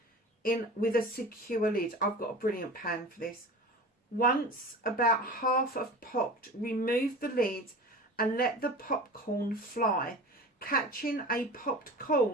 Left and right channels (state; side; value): normal; both; correlation 0.35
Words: in with a secure lid. I've got a brilliant pan for this. Once about half have popped, remove the lid and let the popcorn fly. Catching a popped